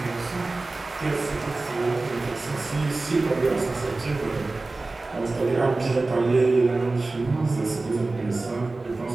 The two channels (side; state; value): left; quieter; 3.3 dB